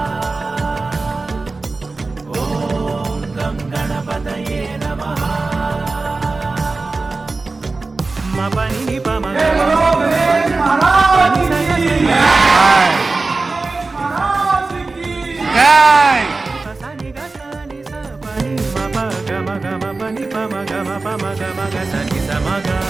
ఓం గం గణపతయే నమః. మపని పమ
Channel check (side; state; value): left; quieter; 3.7 dB